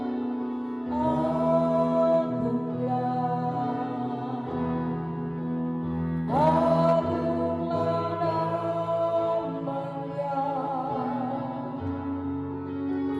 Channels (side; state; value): both; identical; correlation 1.00